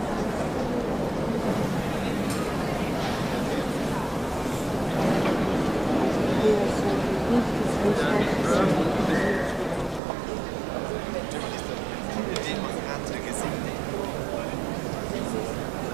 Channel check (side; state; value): left; drops out; at 10.0 s